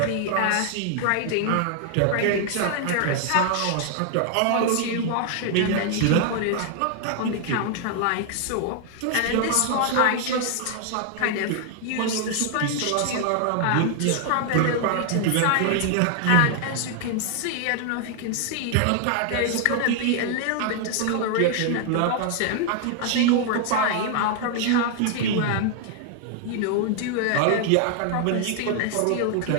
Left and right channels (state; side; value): different; both; correlation 0.00